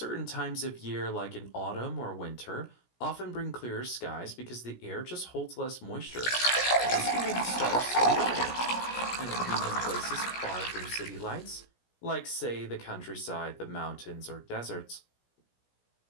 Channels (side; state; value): right; late; 17 ms